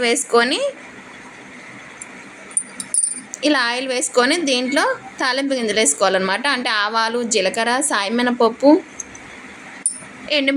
వేసుకొని ఇలా ఆయిల్ వేసుకొని దీంట్లో తాలింపు గింజలు వేసుకోవాలన్నమాట. అంటే ఆవాలు, జీలకర్ర, సాయమినపప్పు,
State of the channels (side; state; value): both; identical; correlation 1.00